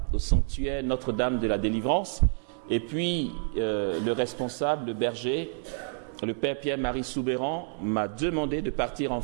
au sanctuaire Notre-Dame de la Délivrance. Et puis, le responsable, le berger, le père Pierre-Marie Soubéran, m'a demandé de partir en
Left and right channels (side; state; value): left; silent; 59 dB below the other